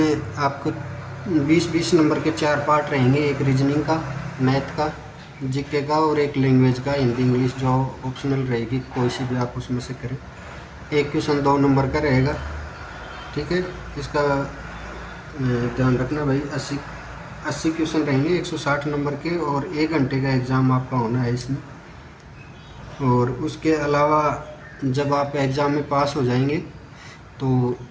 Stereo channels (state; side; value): identical; both; correlation 1.00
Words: आपको 20-20 नंबर के 4 पार्ट रहेंगे, एक रीजनिंग का, मैथ का, जीके का और एक लैंग्वेज का, हिंदी इंग्लिश जो ऑप्शनल रहेगी, कोई सी भी आप उसमें से करें। एक क्वेश्चन 2 नंबर का रहेगा, ठीक है। इसका ध्यान रखना भाई। 80 क्वेश्चन रहेंगे 160 नंबर के और 1 घंटे का एग्ज़ाम आपका होना है इसमें। और उसके अलावा जब आप एग्ज़ाम में पास हो जाएंगे तो